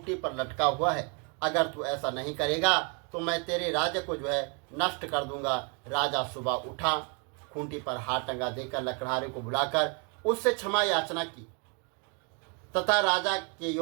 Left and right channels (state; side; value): quieter; left; 34.8 dB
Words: पर लटका हुआ है। अगर तू ऐसा नहीं करेगा तो मैं तेरे राज्य को जो है नष्ट कर दूंगा। राजा सुबह उठा, खूंटी पर हार टंगा देकर लकड़हारे को बुलाकर उससे क्षमा याचना की तथा राजा के